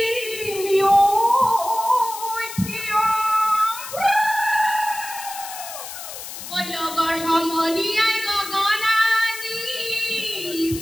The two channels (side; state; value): left; noise; hiss, 10 dB below the sound